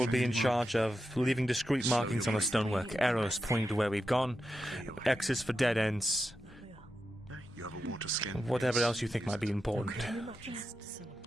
be in charge of leaving discreet markings on the stonework, arrows pointing to where we've gone, X's for dead ends, You have a water skin. whatever else you think might be important.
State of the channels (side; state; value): both; normal; correlation 0.89